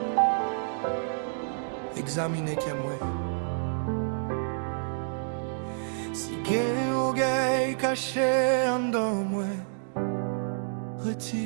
examiner que moi. Si gain au gain caché en dans moi,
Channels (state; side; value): silent; left; digital silence